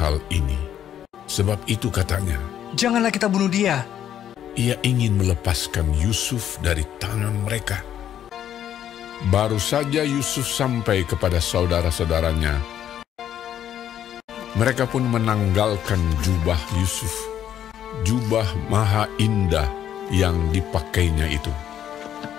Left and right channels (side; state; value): right; quieter; 10.3 dB